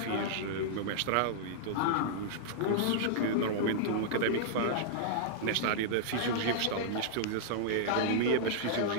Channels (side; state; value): both; different; correlation -0.01